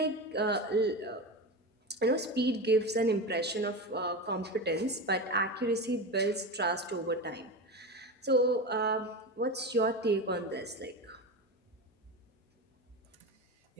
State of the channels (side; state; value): both; normal; correlation 0.22